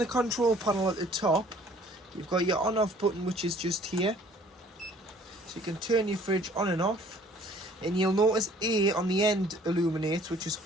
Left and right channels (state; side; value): normal; both; correlation 0.55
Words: control panel at the top, you've got your on off button, which is just here. So you can turn your fridge on and off. And you'll notice A on the end illuminates, which is